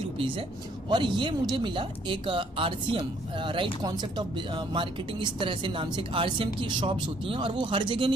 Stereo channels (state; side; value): normal; both; correlation 0.64